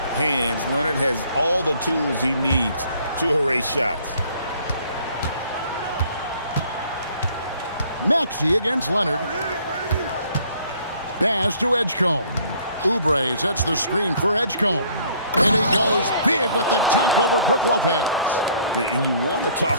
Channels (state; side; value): inverted; both; correlation -0.59